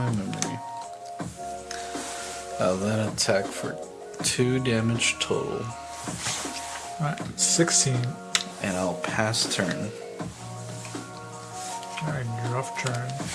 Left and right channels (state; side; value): identical; both; correlation 1.00